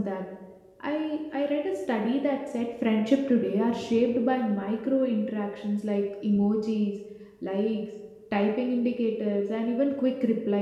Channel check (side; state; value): both; identical; correlation 1.00